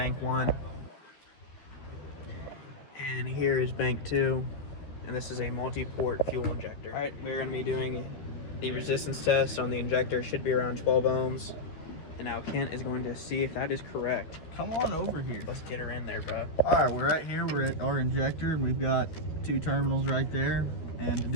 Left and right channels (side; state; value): right; late; 13 ms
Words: 1. And here is bank 2. And this is a multi-port fuel injector. Alright, we're going to be doing the resistance test on the injector. Should be around 12 ohms. And now Kent is going to see if that is correct. Come on over here. Let's get her in there, bro. Alright, we're right here. We're at our injector and we've got 2 terminals right there. And to